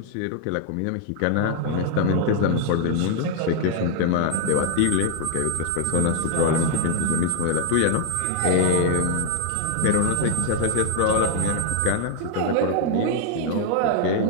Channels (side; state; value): both; different; correlation 0.00